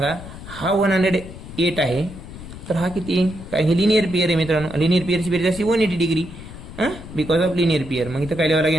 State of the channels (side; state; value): left; noise; rumble, 13 dB below the sound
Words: हा 108 आहे तर हा किती काय? हे लिनियर पेअर आहे मित्रांनो. लिनियर पेअरची बेरीज असते 180 degree because of linear pair. मग इथं काय लिहावं